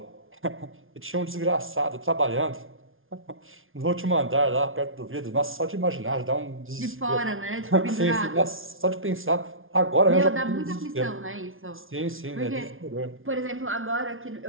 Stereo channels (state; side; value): late; left; 0.59 ms